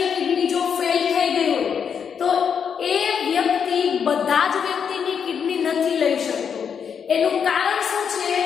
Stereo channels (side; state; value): right; quieter; 7.1 dB